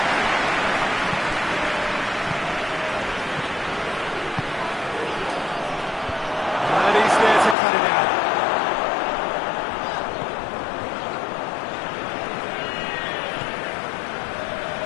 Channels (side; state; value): right; drops out; at 7.6 s